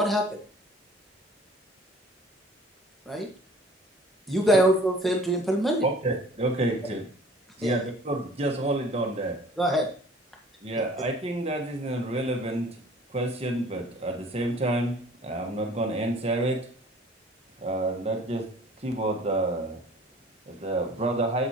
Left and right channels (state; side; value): normal; both; correlation 0.50